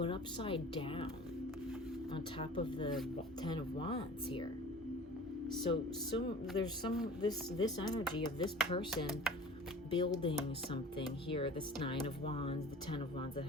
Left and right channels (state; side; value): normal; both; correlation 0.42